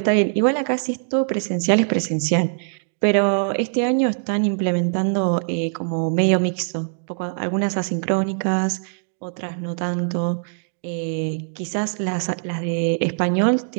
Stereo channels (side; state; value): left; silent; digital silence